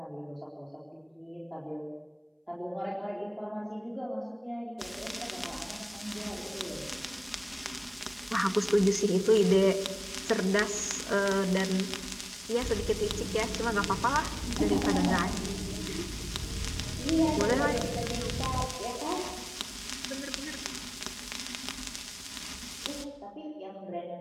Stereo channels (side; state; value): both; identical; correlation 1.00